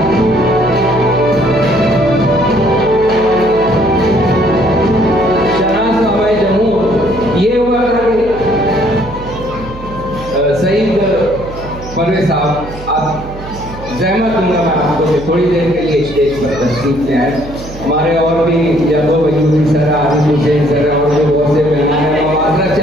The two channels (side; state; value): right; noise; hum, 14 dB below the sound